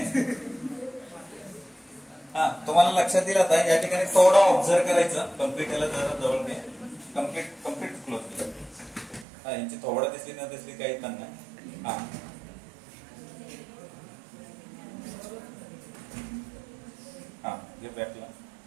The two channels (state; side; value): drops out; left; at 9.2 s